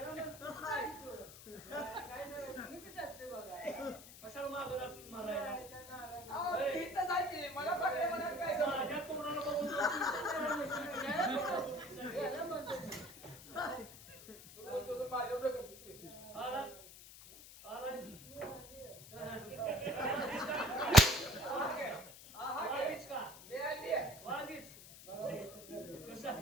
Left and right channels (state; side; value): noise; left; hiss, 16 dB below the sound